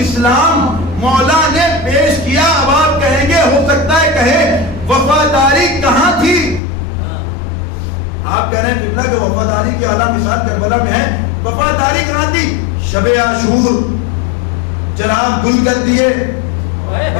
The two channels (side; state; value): right; drops out; at 6.6 s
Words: اسلام مولا نے پیش کیا. اب آپ کہیں گے, ہو سکتا ہے کہیں وفاداری کہاں تھی؟ آپ کہہ رہے ہیں قبلہ کہ وفاداری کی اعلیٰ مثال کربلا میں ہے. وفاداری کہاں تھی؟ شب عاشور چراغ گل کر دیے.